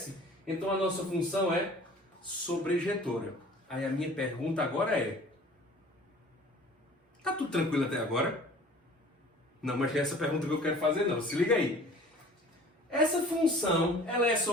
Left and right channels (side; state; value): both; normal; correlation 0.47